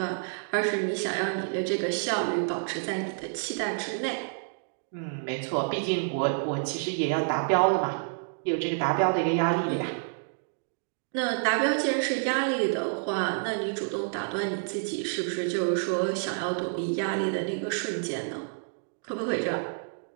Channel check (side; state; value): left; silent; digital silence